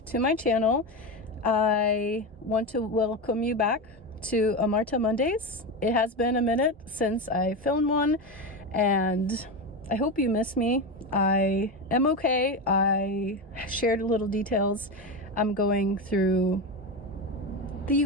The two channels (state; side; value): normal; both; correlation 0.17